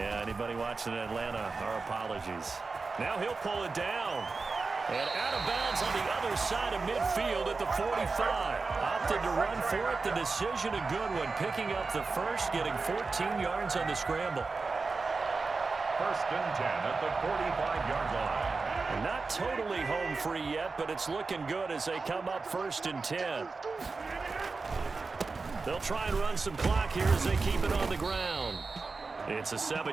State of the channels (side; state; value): left; quieter; 4.1 dB